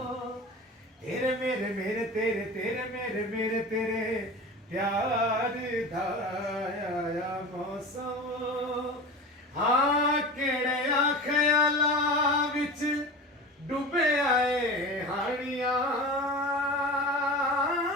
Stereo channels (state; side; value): normal; both; correlation 0.32